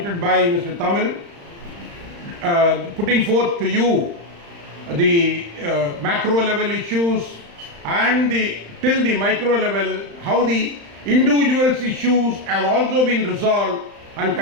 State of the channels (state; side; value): late; left; 35 ms